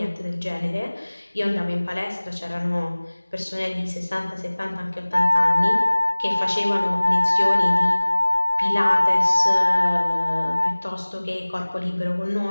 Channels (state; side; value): inverted; both; correlation -1.00